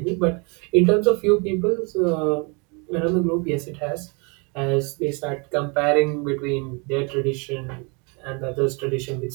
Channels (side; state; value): left; quieter; 32.1 dB